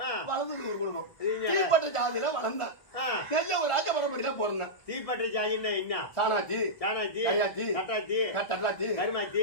வளர்ந்தது ஒரு குடும்பம் தீப்பட்ட ஜாதியில வளர்ந்தேன் நெல்ல ஒரு ராஜ பரம்பரையில பிறந்தேன் தீப்பட்ட ஜாதின்னா என்ன சாணாச்சி கையாச்சி கட்டாச்சி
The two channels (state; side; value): late; right; 1.4 ms